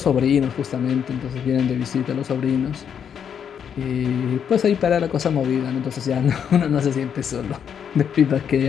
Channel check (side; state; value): right; quieter; 7.9 dB